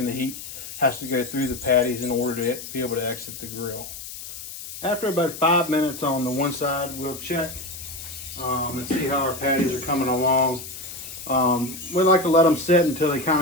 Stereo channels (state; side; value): noise; left; hiss, 11 dB below the sound